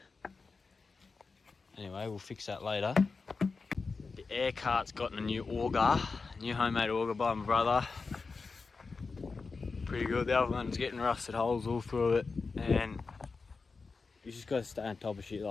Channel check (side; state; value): right; quieter; 4.4 dB